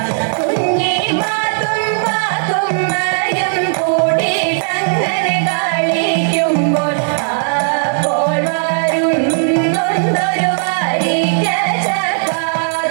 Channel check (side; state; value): left; silent; digital silence